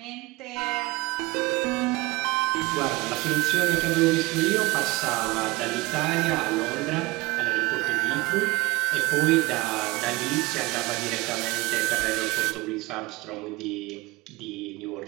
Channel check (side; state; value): left; quieter; 22.1 dB